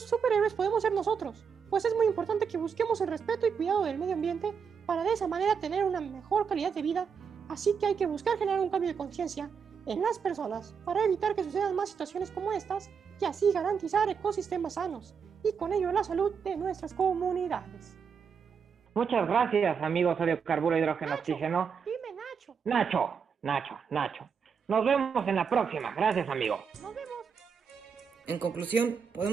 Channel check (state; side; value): quieter; left; 6.4 dB